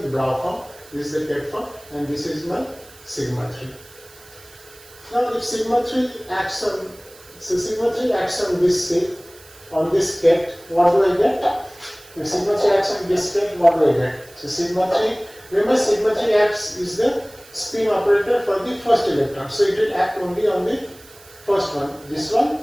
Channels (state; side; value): noise; right; hiss, 22 dB below the sound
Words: bra form, this is the ket form, and this is my sigma 3. Now if sigma 3 acts on, so sigma 3 acts on this state, on this ket, what do I get? If sigma 3 acts on this ket, what do I get? So sigma 3, remember sigma 3 acts is the spin operator for the first electron. So it will act only on the first one, this one